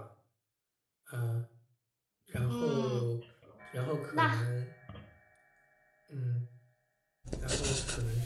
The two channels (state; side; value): identical; both; correlation 1.00